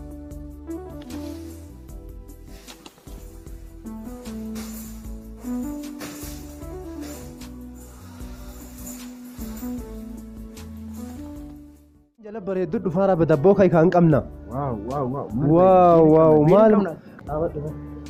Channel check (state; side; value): identical; both; correlation 1.00